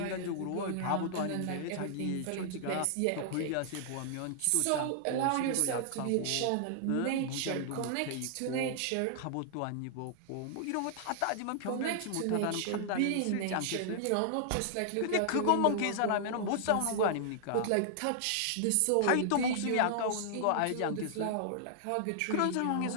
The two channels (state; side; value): different; both; correlation -0.01